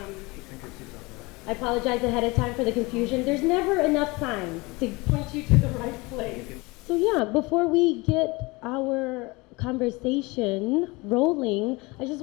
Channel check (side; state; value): right; quieter; 24.5 dB